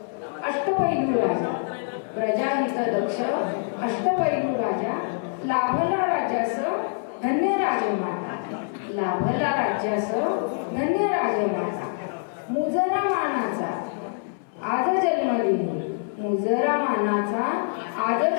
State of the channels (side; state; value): right; silent; 62 dB below the other